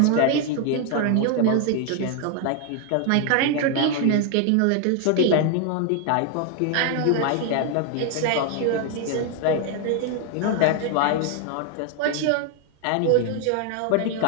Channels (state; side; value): different; both; correlation 0.00